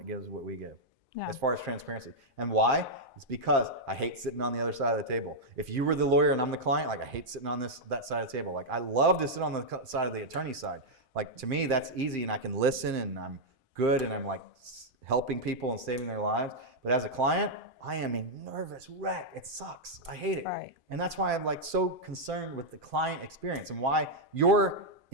gives what we give. Yeah. As far as transparency. And why? It's because I hate sitting on the other side of the table. If you were the lawyer and I'm the client, like I hate sitting on that side of the table. Like I love to sit on the side of the attorney side. Like to me, that's easy and I can listen and I'm good and I'm like helping people and saving their lives. But as a client, I am a nervous wreck. It sucks. I hate it. Right. And that's why I'm like so concerned with the client experience and why you're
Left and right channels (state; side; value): late; left; 2.5 ms